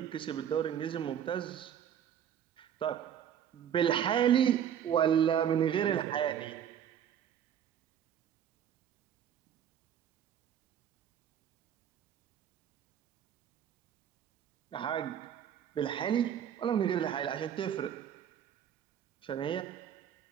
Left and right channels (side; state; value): left; quieter; 9.3 dB